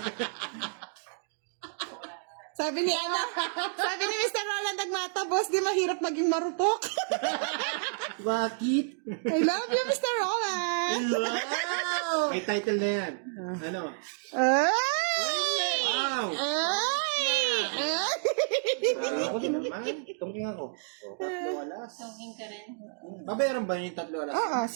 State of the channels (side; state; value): left; silent; digital silence